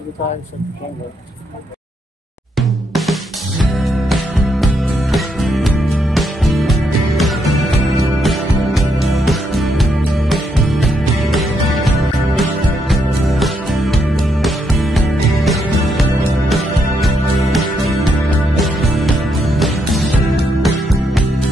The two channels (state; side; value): normal; both; correlation 0.77